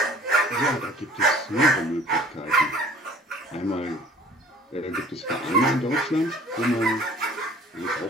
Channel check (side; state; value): both; normal; correlation 0.50